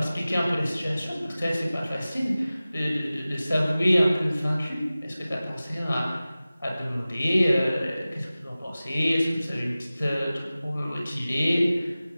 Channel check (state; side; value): inverted; both; correlation -0.97